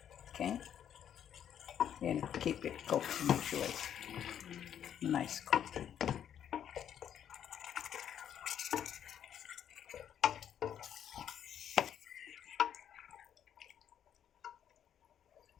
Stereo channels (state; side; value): quieter; right; 9.5 dB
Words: Okay? And keep it cooked to make sure it's nice cooked.